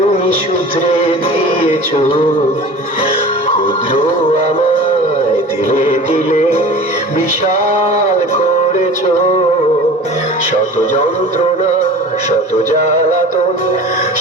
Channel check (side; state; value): both; normal; correlation 0.39